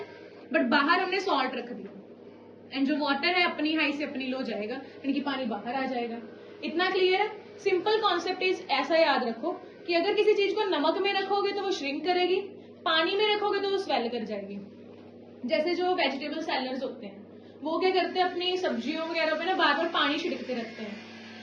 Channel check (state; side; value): identical; both; correlation 1.00